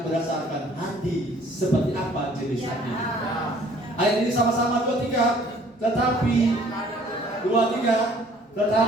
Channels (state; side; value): normal; both; correlation 0.57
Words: berdasarkan hati seperti apa jenis hati. Ayat ini sama-sama 2-3.